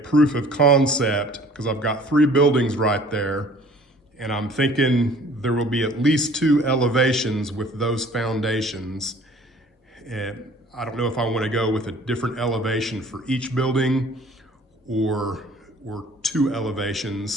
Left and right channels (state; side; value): normal; both; correlation 0.52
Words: of concept, because I've got 3 buildings right there, and I'm thinking there will be at least 2 elevations with those foundations. And I don't know if I want to go with a different elevation for each building or 2